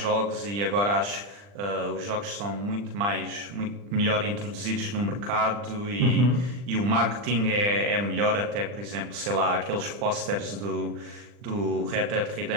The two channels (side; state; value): left; late; 40 ms